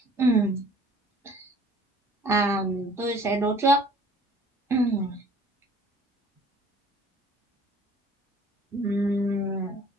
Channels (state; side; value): normal; both; correlation 0.52